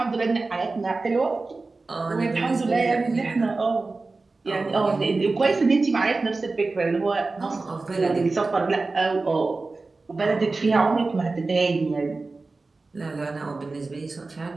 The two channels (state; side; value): quieter; left; 3.6 dB